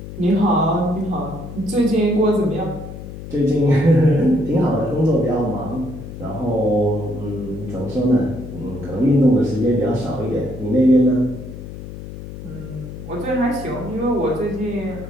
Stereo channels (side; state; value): left; noise; hum, 12 dB below the sound